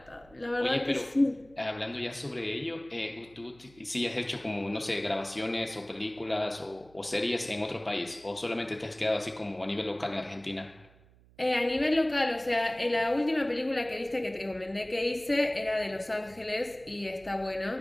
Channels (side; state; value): right; noise; hum, 27 dB below the sound